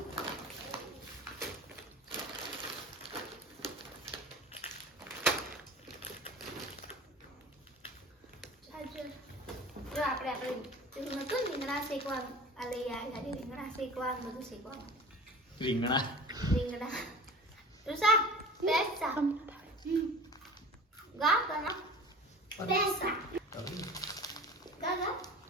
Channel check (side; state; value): both; normal; correlation 0.38